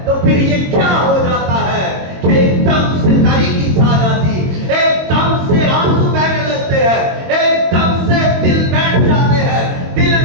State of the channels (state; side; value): late; left; 22 ms